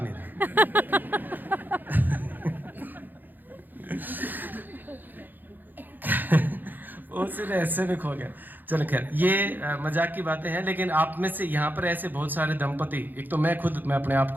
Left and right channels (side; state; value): left; late; 0.088 ms